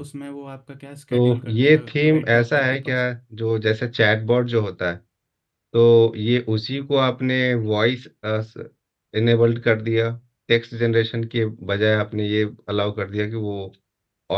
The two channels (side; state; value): both; identical; correlation 1.00